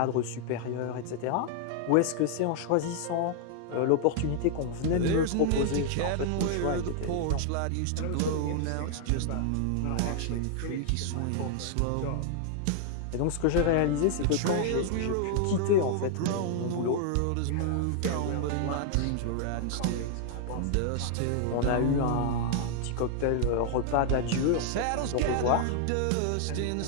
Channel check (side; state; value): both; different; correlation 0.00